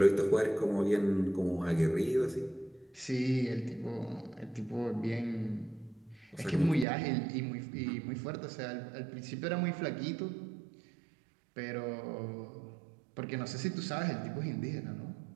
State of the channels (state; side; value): drops out; left; at 6.9 s